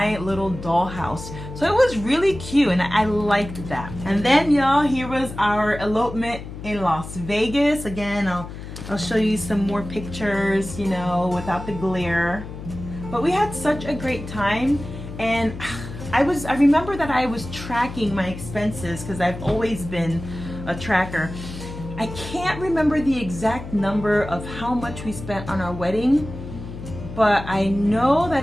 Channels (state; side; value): noise; left; hum, 11 dB below the sound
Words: little dollhouse. So it was really cute, and I liked that. And then, y'all, here was our elopement in Las Vegas. Again, I'll show you some more pictures, you know, without the glare. But we had such a great time, and I remember that I was tracking my expenses because I've always been a tracker. I can't remember the exact number of how much we spent on our wedding, but I know